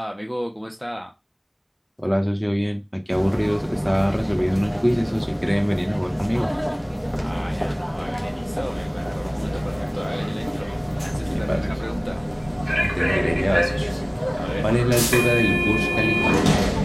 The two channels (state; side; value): identical; both; correlation 1.00